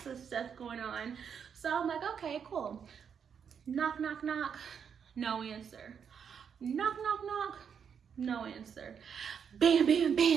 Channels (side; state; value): left; quieter; 7.3 dB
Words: of stuff going on. So I'm like, okay, cool. Knock, knock, knock, no answer. Knock, knock, knock, no answer. Bam, bam,